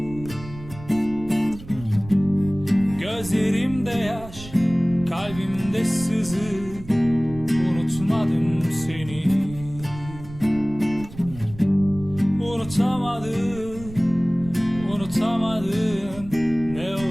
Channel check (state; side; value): noise; right; rumble, 15 dB below the sound